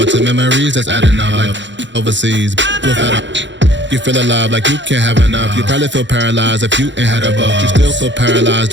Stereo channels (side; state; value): left; late; 0.53 ms